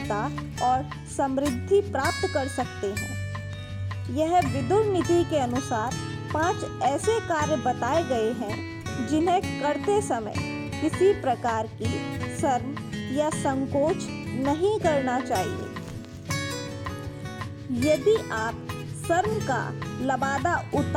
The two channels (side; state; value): both; identical; correlation 1.00